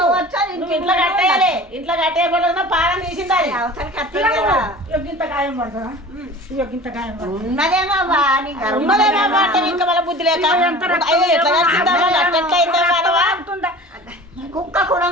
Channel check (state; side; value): normal; both; correlation 0.40